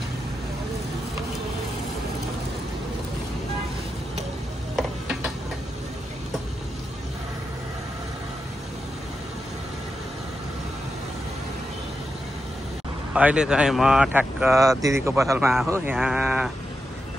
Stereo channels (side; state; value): both; normal; correlation 0.88